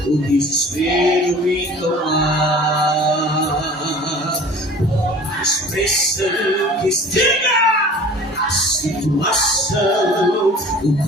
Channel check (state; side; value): normal; both; correlation 0.44